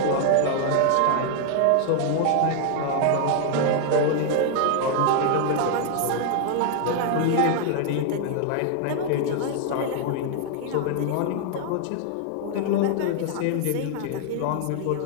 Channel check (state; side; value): different; both; correlation 0.00